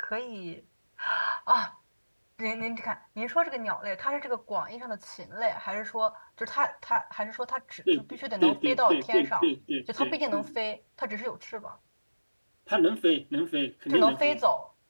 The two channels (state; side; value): inverted; both; correlation -1.00